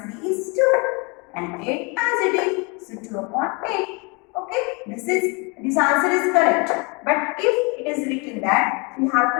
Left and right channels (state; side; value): quieter; right; 30.4 dB